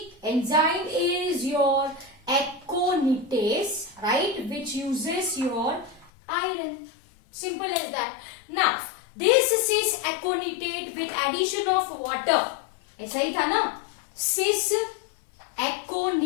Enzyme is your aconitase, right, which uses your iron. Simple as that. Now this cis aconitate with addition of water, ऐसा ही था ना? cis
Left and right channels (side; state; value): right; drops out; at 6.1 s